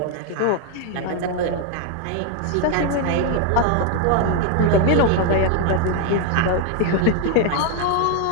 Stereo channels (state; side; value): different; both; correlation 0.01